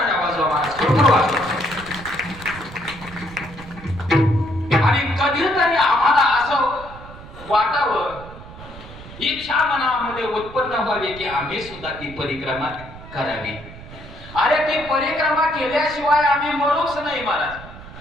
वाजवा महाराज. आणि कधीतरी आम्हाला असं वाटावं, इच्छा मनामध्ये उत्पन्न व्हावी की आम्ही सुद्धा ती परिक्रमा करावी. अरे ती परिक्रमा केल्याशिवाय आम्ही मरूच नाही महाराज.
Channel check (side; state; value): right; noise; rumble, 16 dB below the sound